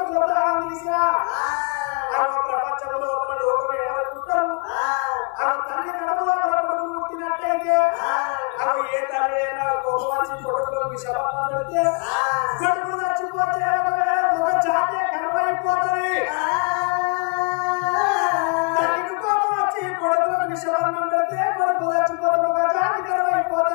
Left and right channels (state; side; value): quieter; right; 36.7 dB